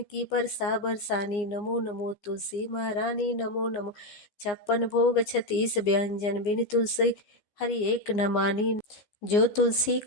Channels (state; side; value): late; right; 15 ms